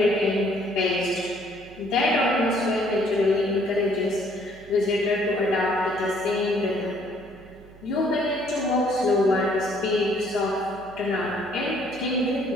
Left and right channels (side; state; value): right; noise; hum, 22 dB below the sound